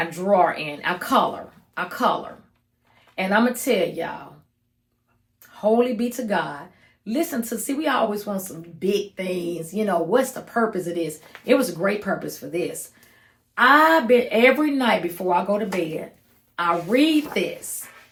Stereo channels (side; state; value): both; identical; correlation 1.00